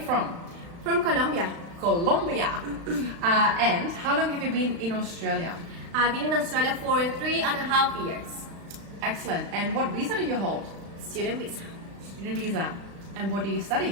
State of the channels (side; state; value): left; late; 35 ms